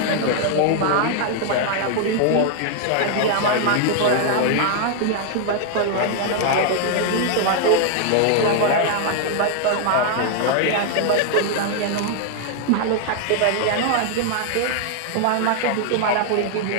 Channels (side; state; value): both; different; correlation 0.00